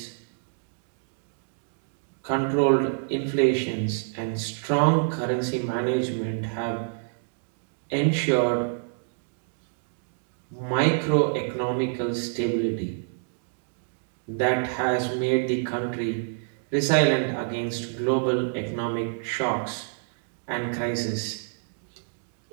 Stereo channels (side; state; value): left; silent; digital silence